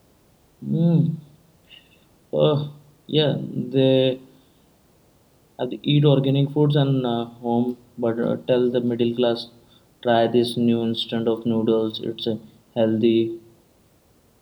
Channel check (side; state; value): both; identical; correlation 1.00